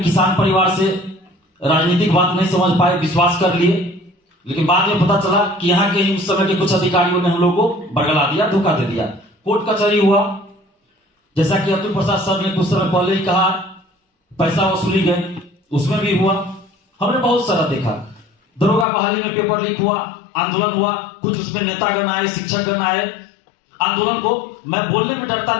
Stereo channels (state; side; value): drops out; right; at 18.9 s